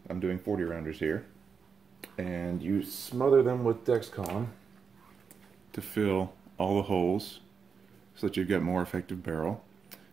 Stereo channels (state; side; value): quieter; left; 6.0 dB